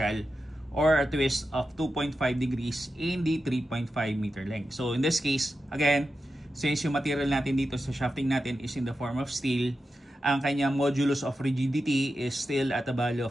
or a twist of 2.5 degrees in the 3.5 meter length. So, in this case, again, since yung material natin dito sa shafting natin is in the form of steel, ang kanyang modulus of rigidity is still at a value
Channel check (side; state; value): both; normal; correlation 0.90